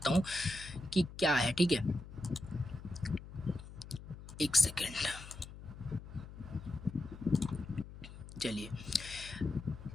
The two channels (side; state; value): left; noise; hum, 14 dB below the sound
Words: हूँ कि क्या है, ठीक है। एक सेकेंड, चलिए,